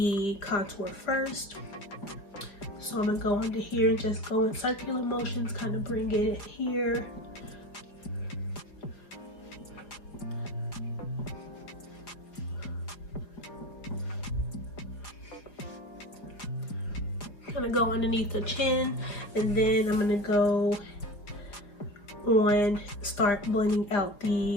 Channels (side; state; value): right; late; 4.8 ms